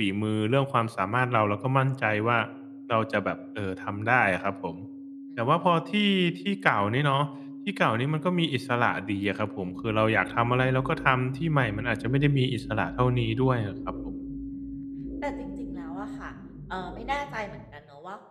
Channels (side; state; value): both; identical; correlation 1.00